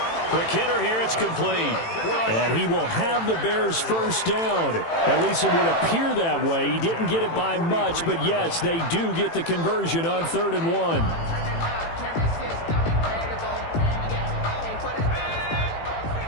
Quick hitter here, it's complete. And he will have the Bears' first down. At least it would appear that way. He didn't get it by much, but yes, they do get the conversion on 3rd and 1.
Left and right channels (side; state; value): right; late; 18 ms